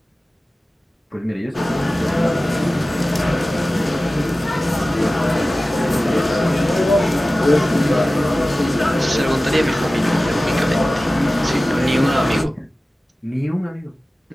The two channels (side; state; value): both; normal; correlation 0.96